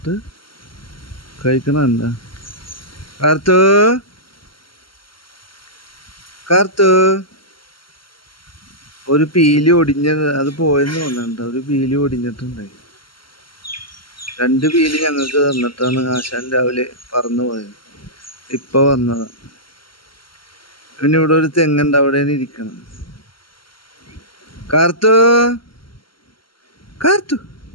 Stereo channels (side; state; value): right; late; 0.74 ms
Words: കഴിക്കണം. എന്താ കാർത്തു ഒരു പീലി ഒടിഞ്ഞത്, അത് പോയെന്ന് തോന്നുന്നുണ്ട്. ഒരു പീലി ഒടിഞ്ഞിട്ടുണ്ടായി. 2 പീലി ഞങ്ങൾക്ക് തന്നിട്ടാണ് ആശാൻ രാവിലെ പറന്നു പോയത്. ഇപ്പൊ വന്നതാ. പിന്നെ ഇവിടെ ഒരു തെങ്ങുണ്ട്, അവിടെ ഇരിക്കണം. കാർത്തു